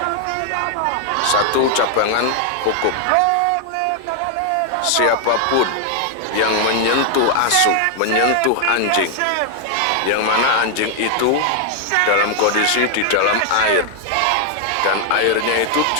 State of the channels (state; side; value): different; both; correlation 0.00